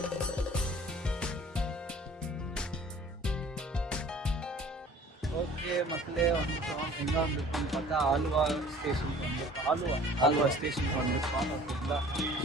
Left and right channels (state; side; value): normal; both; correlation 0.49